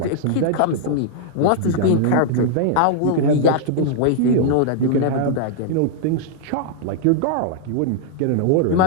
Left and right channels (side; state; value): both; different; correlation -0.01